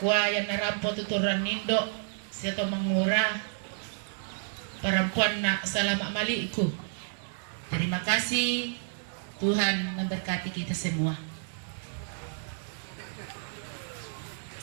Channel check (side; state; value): left; silent; 57 dB below the other